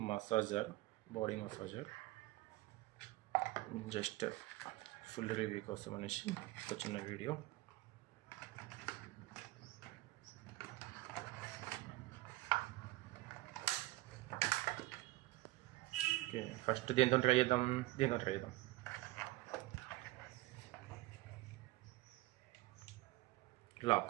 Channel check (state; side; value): quieter; left; 19.3 dB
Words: massager, body massager. Just full review కోసం అనేసి ఒక చిన్న వీడియో. ఓకే, ఫస్ట్ దీంతో ట్రై చేద్దాం.